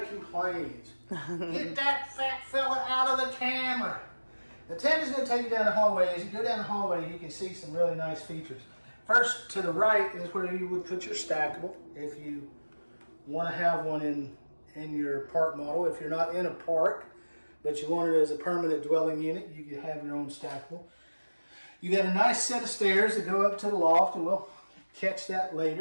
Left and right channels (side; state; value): both; inverted; correlation -1.00